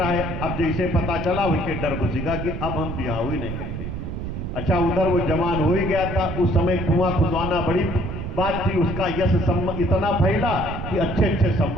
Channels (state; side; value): noise; right; rumble, 5 dB below the sound